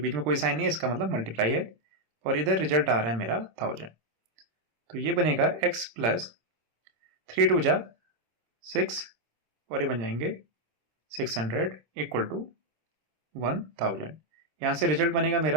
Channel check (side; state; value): left; late; 26 ms